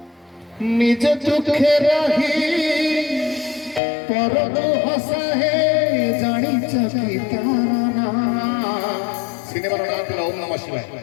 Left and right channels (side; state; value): right; drops out; at 3.8 s